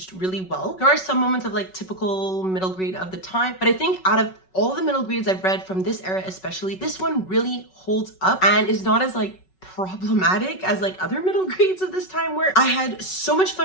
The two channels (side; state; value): right; late; 5.4 ms